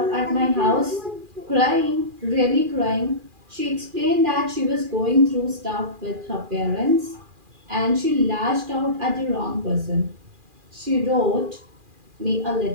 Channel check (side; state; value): left; late; 2.4 ms